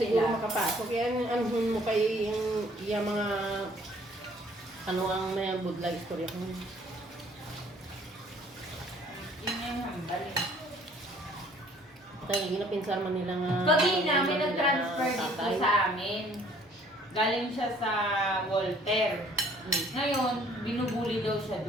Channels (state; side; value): normal; both; correlation 0.58